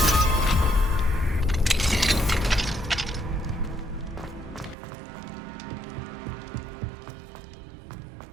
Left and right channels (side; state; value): left; drops out; at 4.8 s